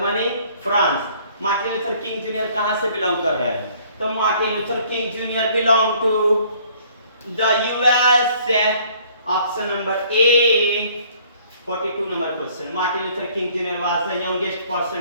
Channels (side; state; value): both; inverted; correlation -0.58